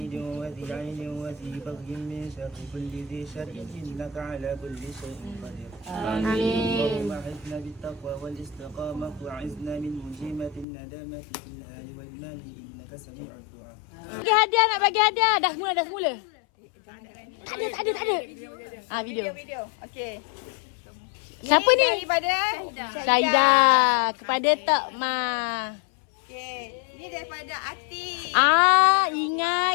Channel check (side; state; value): right; drops out; at 10.7 s